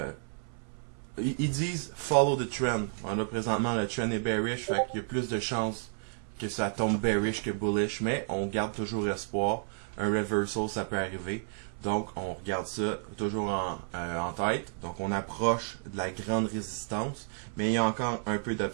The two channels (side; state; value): left; silent; 57 dB below the other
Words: ils disent « follow the trend ». Là, présentement, le trend est bearish, fait qu'il y a plus de chances que ça tombe bearish que bullish, mais on garde toujours espoir. Un reversal, ça peut arriver. Donc, on regarde ça toujours en tête. Donc, on approche de la grande résistance, mais il y a encore un peu